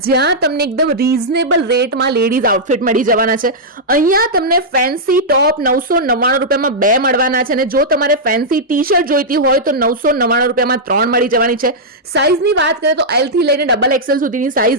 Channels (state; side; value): normal; both; correlation -0.09